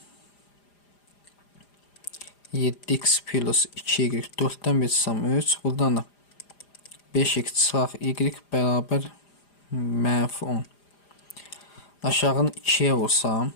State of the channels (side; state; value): right; late; 4.9 ms